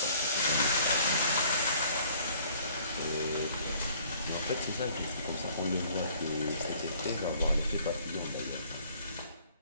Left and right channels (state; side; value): inverted; both; correlation -0.57